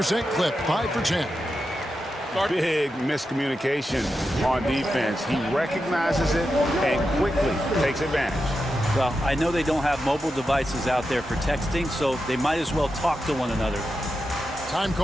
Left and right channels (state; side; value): normal; both; correlation 0.89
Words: clip, 5 for 10. Big miscommunication on defense. He recognizes it and quickly takes advantage. Well, I know they don't have mobile devices out there for texting, so they might as well talk to one another. Time